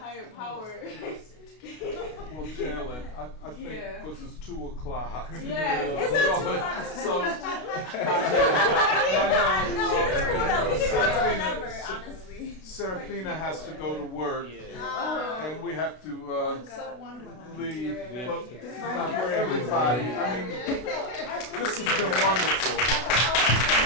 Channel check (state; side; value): late; right; 32 ms